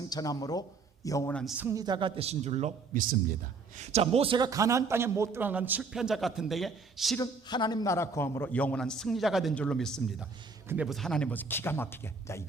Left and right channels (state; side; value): quieter; left; 4.5 dB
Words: 영원한 승리자가 되신 줄로 믿습니다. 자, 모세가 가나안 땅에 못 들어간 실패한 자 같은데 실은 하나님 나라 거함으로 영원한 승리자가 된 줄로 믿습니다. 근데 무슨 하나님 무슨 기가 막히게. 자,